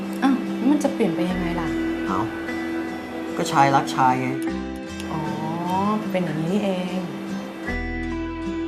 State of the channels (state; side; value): identical; both; correlation 1.00